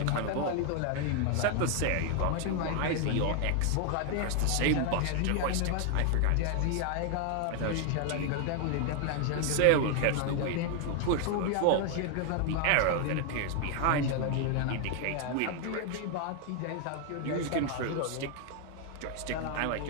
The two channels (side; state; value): both; different; correlation 0.00